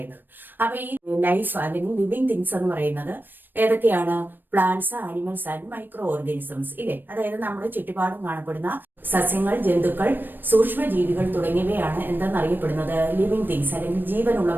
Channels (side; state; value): left; late; 0.093 ms